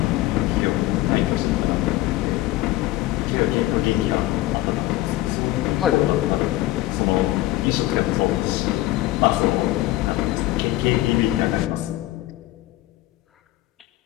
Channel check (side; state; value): right; quieter; 16.8 dB